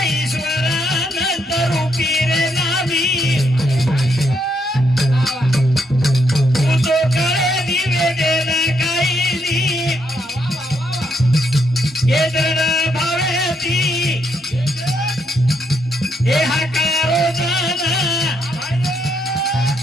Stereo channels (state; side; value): normal; both; correlation 0.76